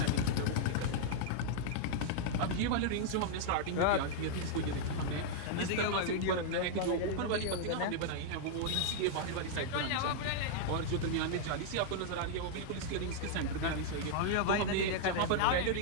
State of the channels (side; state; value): both; different; correlation -0.01